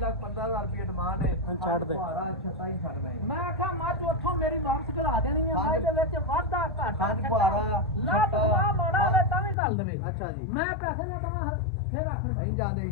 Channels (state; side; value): drops out; right; at 9.6 s